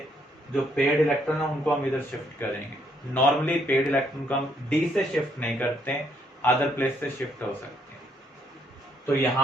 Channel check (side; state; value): both; normal; correlation 0.71